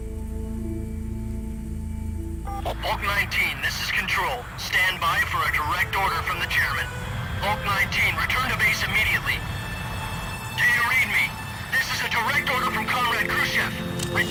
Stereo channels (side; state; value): both; identical; correlation 1.00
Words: Bulk 19, this is Control. Stand by for a direct order from the chairman. Bulk 19, return to base immediately. Do you read me? This is a direct order from Comrade Khrushchev.